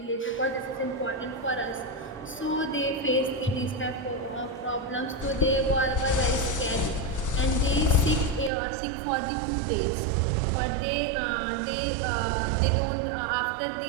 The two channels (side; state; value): left; drops out; at 8.5 s